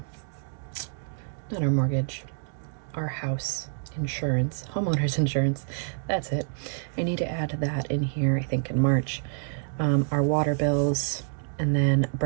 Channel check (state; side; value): silent; left; 60 dB below the other